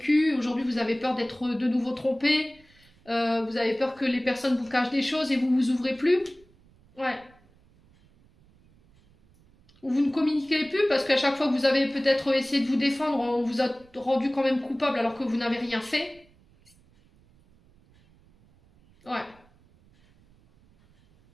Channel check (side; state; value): right; noise; rumble, 30 dB below the sound